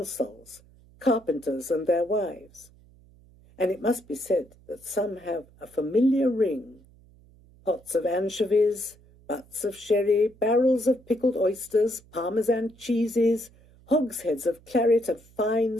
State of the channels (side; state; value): right; noise; hum, 27 dB below the sound